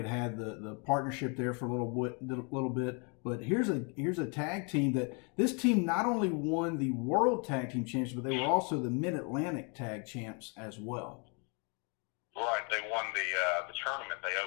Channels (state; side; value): quieter; right; 35.1 dB